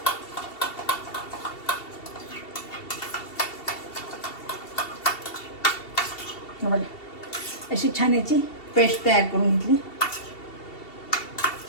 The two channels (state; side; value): late; right; 2.7 ms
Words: बघा अशी छान याची पेस्ट तयार करून घेतली.